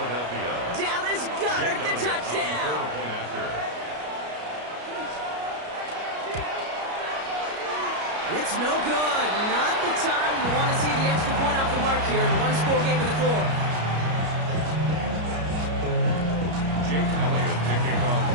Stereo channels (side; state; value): left; late; 33 ms